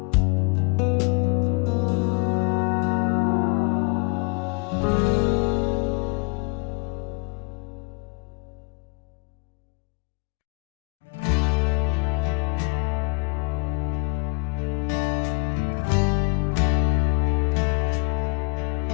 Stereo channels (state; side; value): quieter; right; 33.2 dB